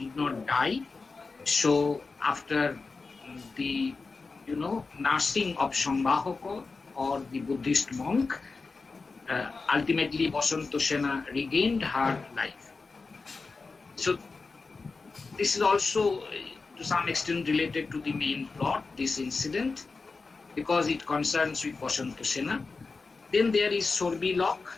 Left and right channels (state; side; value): quieter; right; 4.2 dB